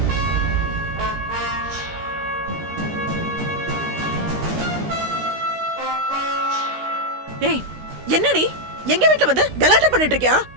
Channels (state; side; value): late; left; 16 ms